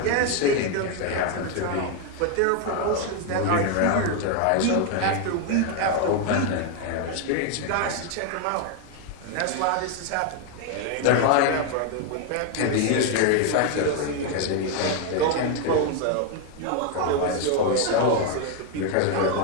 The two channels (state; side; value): different; both; correlation 0.01